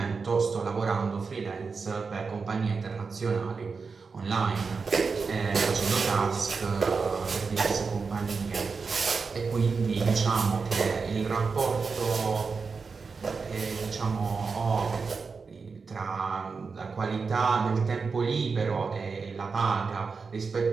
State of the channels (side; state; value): left; quieter; 4.9 dB